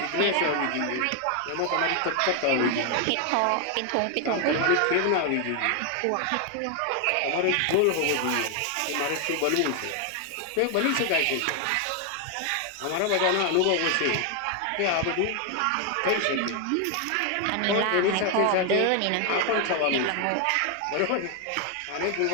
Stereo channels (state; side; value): different; both; correlation 0.01